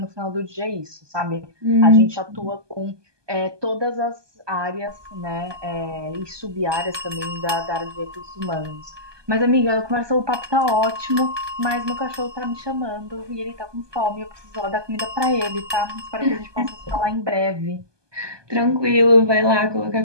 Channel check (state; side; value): late; left; 1.2 ms